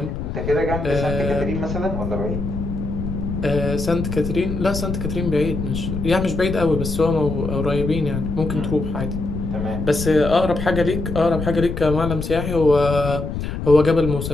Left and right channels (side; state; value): left; noise; rumble, 4 dB below the sound